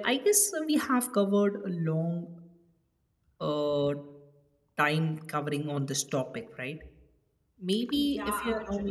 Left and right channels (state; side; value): identical; both; correlation 1.00